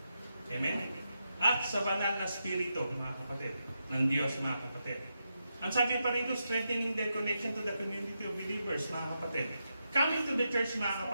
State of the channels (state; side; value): inverted; both; correlation -0.86